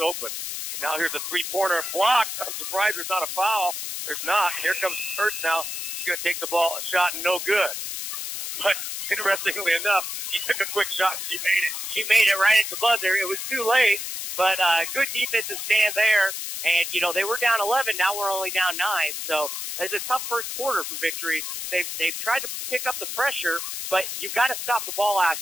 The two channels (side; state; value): left; noise; hiss, 5 dB below the sound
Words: open. Now here's a 3-pointer blocked. I'm surprised there's not a foul. There's not. Here comes Hurst now. She's going to take the ball, a shot, and no good. But interestingly enough, she took a quick shot and she made it. She made it right at the buzzer. It was too late, but good defensive stand there. And, they were down 11. Now we're only down 9. So it's a tough first quarter for Victory. They've tried to pick up the pressure, but you've got to stop the ball out